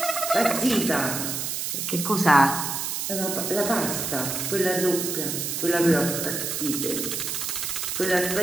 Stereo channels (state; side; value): noise; right; hiss, 2 dB below the sound